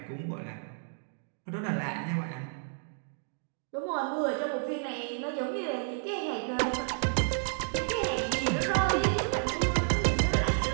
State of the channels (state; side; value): silent; left; digital silence